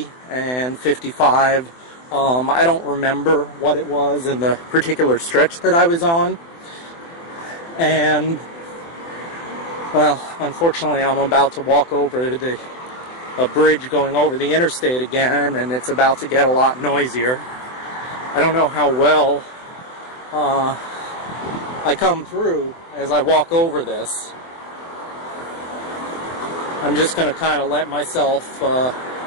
and 55 I don't remember what it was in the particular stretch that I was on. And, well, unfortunately, I'm about to walk over a bridge going over the interstate again, and it's about to get a lot noisier. I don't know how well I come through as I walk over this. I'm just going to kind of let myself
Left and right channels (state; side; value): late; right; 24 ms